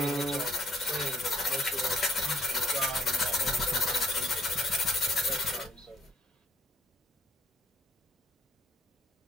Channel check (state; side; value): normal; both; correlation 0.66